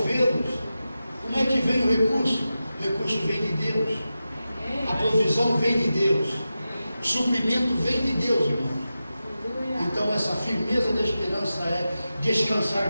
Como é que vem o recurso? O recurso vem de Deus. A provisão vem de Deus. O suprimento vem de Deus, irmãos. Então essa firmeza da esperança é descansar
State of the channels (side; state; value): both; inverted; correlation -0.92